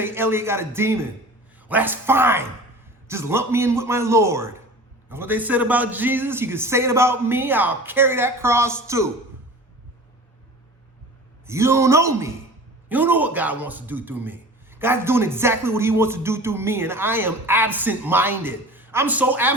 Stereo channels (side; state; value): both; normal; correlation 0.39